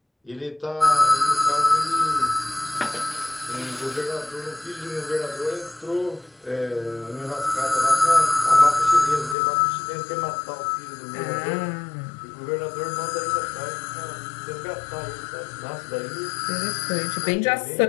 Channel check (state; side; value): drops out; right; at 9.3 s